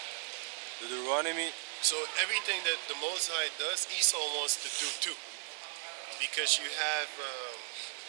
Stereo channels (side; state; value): left; silent; 54 dB below the other